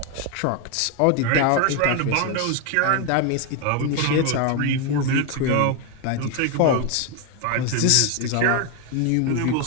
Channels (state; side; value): different; both; correlation 0.01